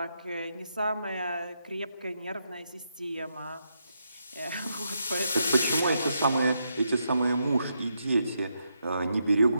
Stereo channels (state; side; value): inverted; both; correlation -0.81